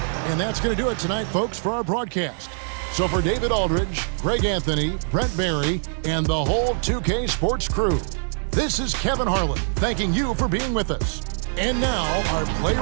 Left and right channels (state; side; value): silent; left; digital silence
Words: And that's going to do it tonight, folks, for our broadcast. So for David Aldridge, Greg Anthony, Brent Barry, and the whole 2K Sports crew, this is Kevin Harlan thanking you for being with us. And now, our player